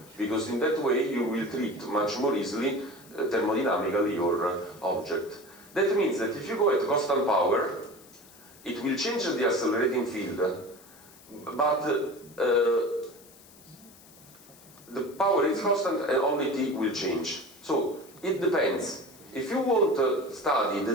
because in that way you will treat much more easily thermodynamically your object. That means that if you go at constant power, it will change the accelerating field, but the power is constant and only T will change. So it depends. If you want to study the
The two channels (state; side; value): noise; left; hiss, 23 dB below the sound